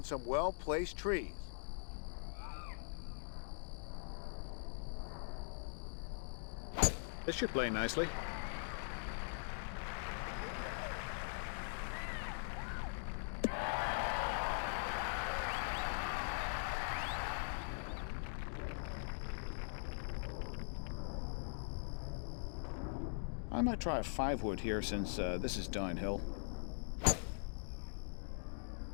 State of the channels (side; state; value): right; silent; digital silence